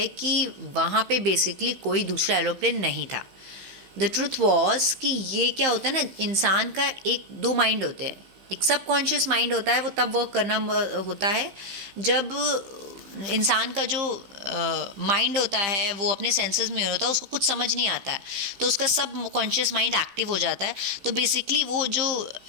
कि वहाँ पे बेसिकली कोई दूसरा एरोप्लेन नहीं था। द ट्रूथ वॉज कि ये क्या होता है ना, इंसान का एक 2 माइंड होते हैं। एक सबकॉन्शियस माइंड होता है, वो तब वर्क करना होता है जब इंसान का जो माइंड होता है वो अपने सेंसेस में होता है, उसको कुछ समझ नहीं आता है, तो उसका सब कॉन्शियस माइंड एक्टिव हो जाता है। तो बेसिकली वो जो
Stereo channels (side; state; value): left; late; 15 ms